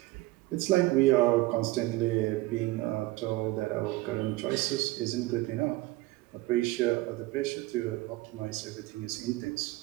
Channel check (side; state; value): left; quieter; 19.2 dB